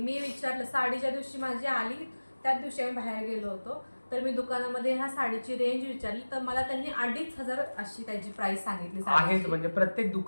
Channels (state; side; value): inverted; both; correlation -1.00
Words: विचारलं, साडीच्या दिवशी माझी आली त्याच दिवशी आम्ही बाहेर गेलो होतो, तर मी दुकानामध्ये ह्या साडीची रेंज विचारली, तर मला त्यांनी 2500 अशी त्याची प्राइस सांगितली आहे. म्हणजे प्रत्येक